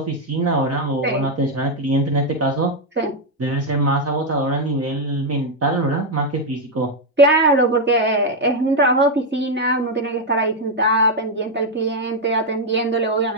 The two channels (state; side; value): normal; both; correlation 0.02